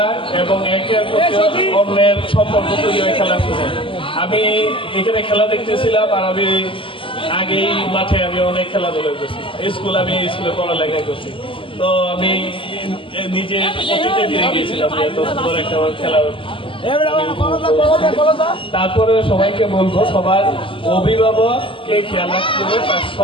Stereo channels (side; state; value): right; late; 0.25 ms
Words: এবং একে অন্যের সম্পর্ক তৈরি হয়ে খেলা শুনে আমি এখানে খেলা দেখতেছিলাম আর আমি আগেই মাঠে আমি অনেক খেলাধুলা করছি আমি স্কুলে পড়ালেখা করছি তো আমি নিজে অতীতে ফিরে গিয়েছিলাম এত সুন্দর একটা খেলা তারপরে সবাইকে বলবো সবার অভিভাবককে খেয়াল রাখতে হবে তার